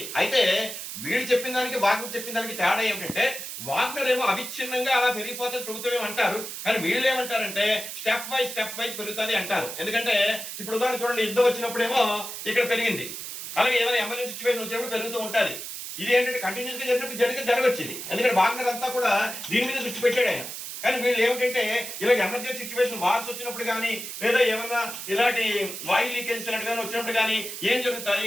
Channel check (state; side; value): noise; right; hiss, 8 dB below the sound